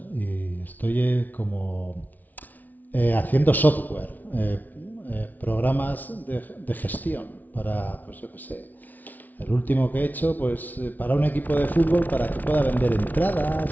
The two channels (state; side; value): late; right; 0.079 ms